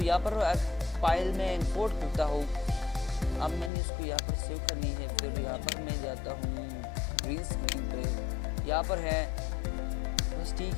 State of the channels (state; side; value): drops out; right; at 3.7 s